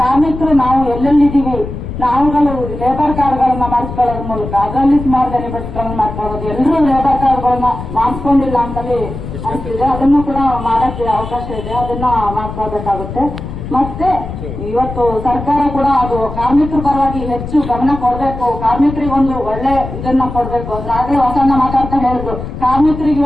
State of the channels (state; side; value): noise; left; rumble, 8 dB below the sound